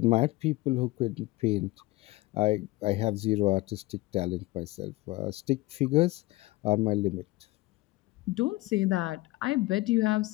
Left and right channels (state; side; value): quieter; right; 20.2 dB